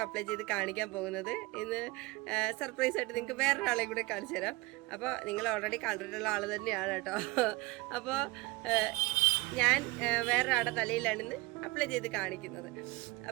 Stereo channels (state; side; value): quieter; left; 22.3 dB